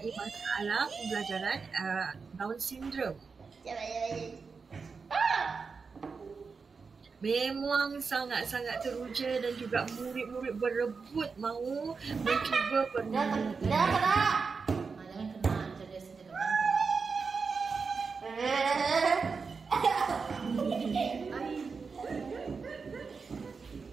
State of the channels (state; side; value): quieter; left; 5.0 dB